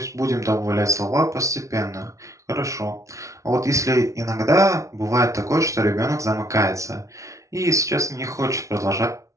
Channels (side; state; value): left; late; 0.15 ms